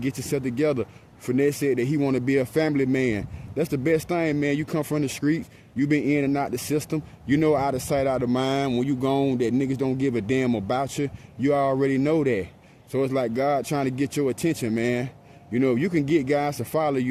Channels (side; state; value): both; identical; correlation 1.00